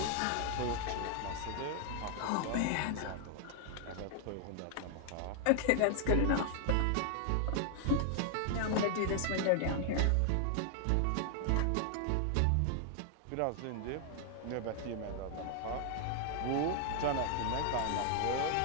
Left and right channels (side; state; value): both; different; correlation 0.00